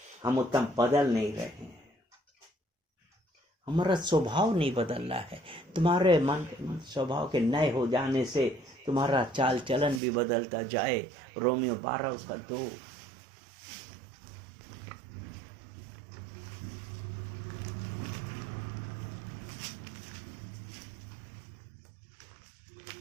हम उतना बदल नहीं रहे हैं, हमारा स्वभाव नहीं बदल रहा है। तुम्हारे मन स्वभाव के नए हो जाने से तुम्हारा चाल चलन भी बदलता जाए। रोमियो 12:2।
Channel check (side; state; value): left; drops out; at 10.0 s